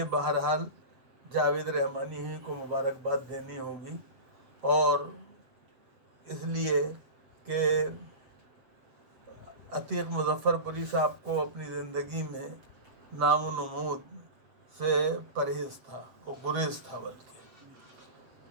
بہرحال جاوید رحمانی ہی کو مبارکباد دینی ہوگی، اور اس لیے کہ عتیق مظفر پوری صاحب کو اپنی زندگی میں نام و نمود سے پرہیز تھا، وہ گریز تھا بلکہ،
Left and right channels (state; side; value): late; left; 7.6 ms